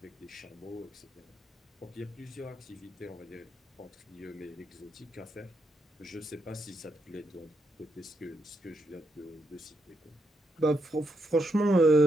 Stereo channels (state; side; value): normal; both; correlation 0.81